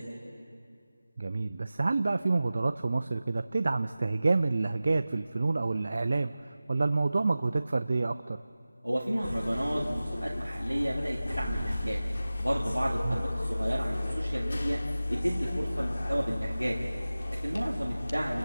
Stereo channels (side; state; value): both; inverted; correlation -0.97